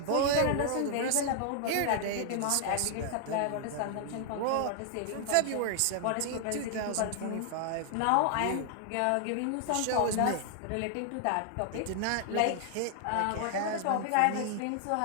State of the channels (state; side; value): different; both; correlation 0.00